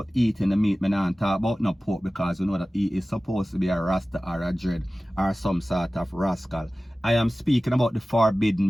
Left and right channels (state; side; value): normal; both; correlation 0.97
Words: eating the meat, I don't talk about no pork, because you know that he is supposed to be a Rasta or a dread or some sort of rascal. I am speaking about the